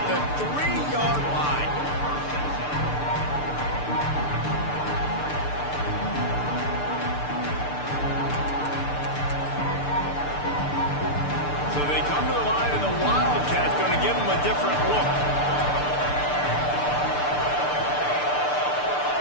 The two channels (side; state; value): right; late; 6.8 ms